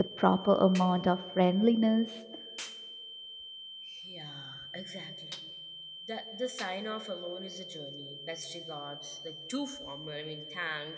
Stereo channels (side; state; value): both; identical; correlation 1.00